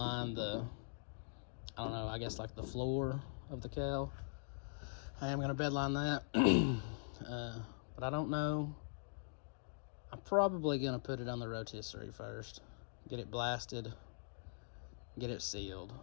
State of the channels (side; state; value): right; silent; digital silence